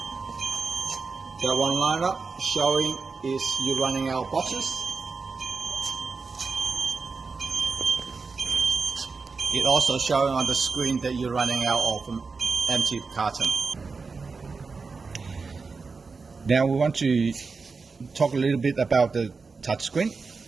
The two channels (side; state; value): left; quieter; 4.6 dB